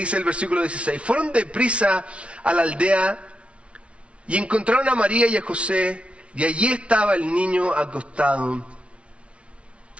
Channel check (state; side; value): late; left; 0.061 ms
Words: el versículo 16, fueron deprisa a la aldea y encontraron a María y a José, y allí estaba el niño acostado